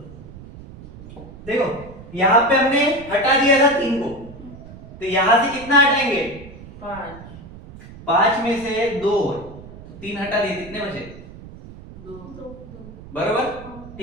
देखो यहाँ पे हमने हटा दिया था 3 को, तो यहां से कितना हटाएंगे? 5 में से 2, तो 3 हटा दिए, कितने बचे? 2। बरोबर,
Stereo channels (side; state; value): right; noise; rumble, 16 dB below the sound